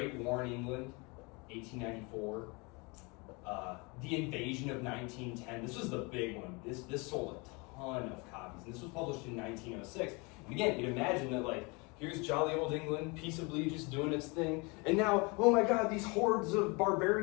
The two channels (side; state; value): right; quieter; 28.7 dB